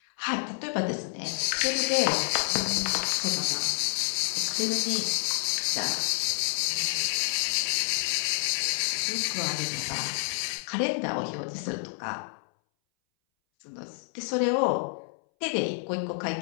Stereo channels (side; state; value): right; silent; 59 dB below the other